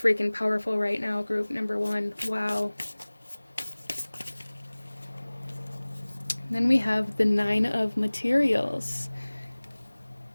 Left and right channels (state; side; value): inverted; both; correlation -1.00